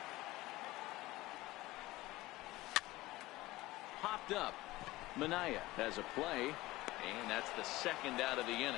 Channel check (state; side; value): quieter; right; 18.7 dB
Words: Popped up. Manaea has a play, and that's the second out of the